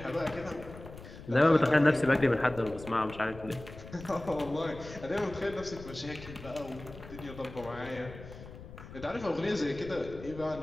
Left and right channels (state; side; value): noise; left; rumble, 15 dB below the sound